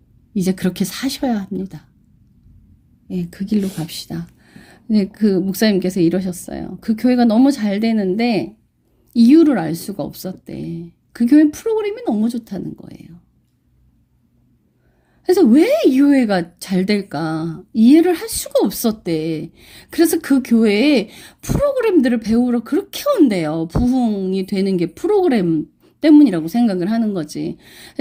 이제 그렇게 사셔야 합니다. 예, 그 길로 갑시다. 네, 그 목사님께서 이러셨어요. 그 교회가 너무 잘 되는데 이유를 알 수가 없었대. 그 교회 프로그램이 너무 좋다는 거예요. 그래서 왜 이 교회가 잘 될까 이해를 할 수가 없었대. 그래서 그 교회에 프로그램들을 배우러 그렇게 온대요. 부흥이 되는 게 프로그램 때문이라고 생각을 하는 거지.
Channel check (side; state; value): both; identical; correlation 1.00